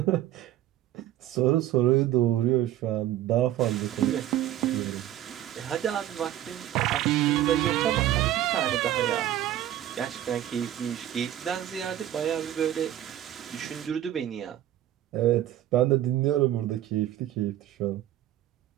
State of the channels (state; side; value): quieter; left; 12.7 dB